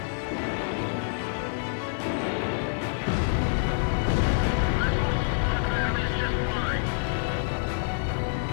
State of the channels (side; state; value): right; silent; digital silence